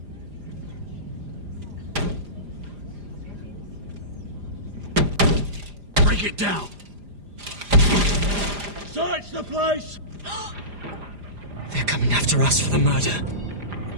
Break it down. Search the place. They're coming after us for the murder.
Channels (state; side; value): late; left; 4.9 ms